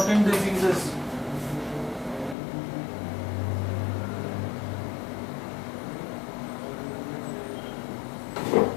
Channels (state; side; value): drops out; right; at 2.4 s